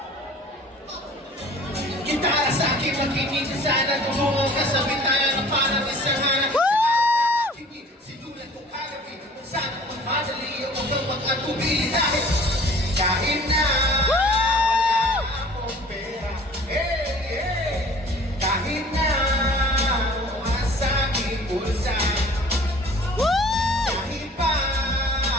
Gitara sa akin, makinig ka sana. Tumungo ka sa bitaya na parang isang hanap. Sinulat ko kagabi kung saan ko magmadali o huwag kang mag-atubili dahil kahit na wala akong pera. Hey, hey! Kahit na wala sa aking bulsa. Kahit pa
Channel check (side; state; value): both; normal; correlation 0.49